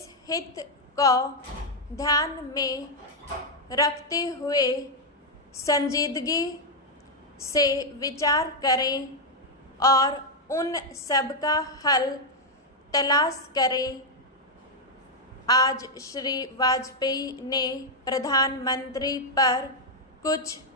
हित को ध्यान में रखते हुए संजीदगी से विचार करें और उन सब का हल तलाश करें। आज श्री वाजपेयी ने प्रधानमंत्री पर कुछ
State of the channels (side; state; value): both; normal; correlation -0.01